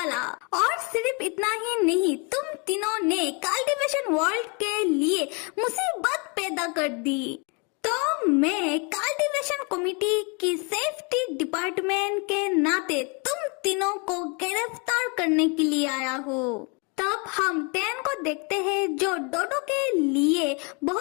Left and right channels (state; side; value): quieter; right; 33.3 dB